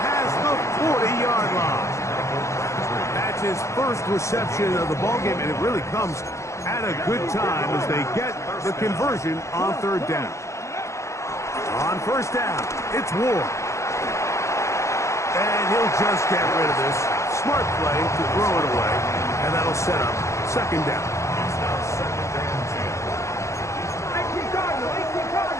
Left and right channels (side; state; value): right; late; 0.14 ms